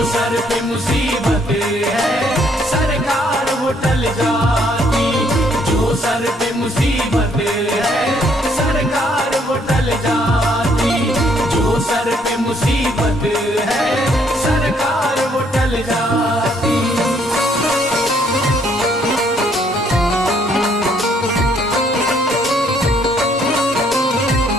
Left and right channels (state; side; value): normal; both; correlation 0.67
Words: सर पे मुसीबत है सरकार वो टल जाती। जो सर पे मुसीबत है सरकार वो टल जाती। जो सर पे मुसीबत है सरकार वो टल जाती।